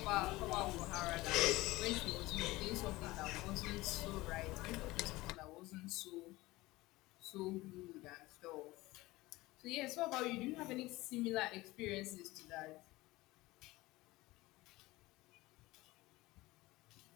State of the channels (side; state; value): right; quieter; 19.7 dB